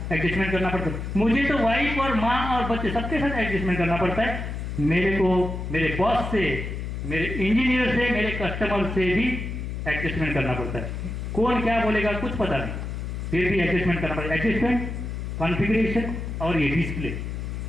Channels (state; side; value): noise; left; hum, 5 dB below the sound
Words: एडजस्टमेंट करना पड़ता है। मुझे तो वाइफ और माँ और बच्चे सबके साथ एडजस्टमेंट करना पड़ता है। मेरे को मेरे बॉस से, मेरे इंजीनियर से, मेरे कस्टमर से भी एडजस्टमेंट करना पड़ता है। कौन क्या बोलेगा कुछ पता नहीं, फिर भी एडजस्टमेंट करना पड़ता है। एडजस्टमेंट, कॉन्फ़िगरेशन और ये डिस्प्ले,